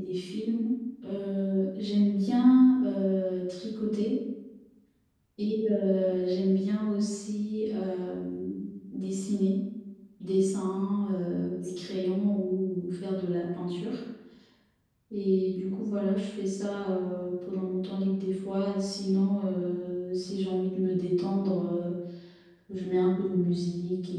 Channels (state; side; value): identical; both; correlation 1.00